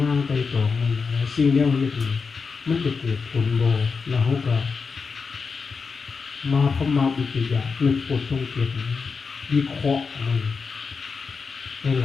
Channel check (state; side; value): quieter; right; 5.0 dB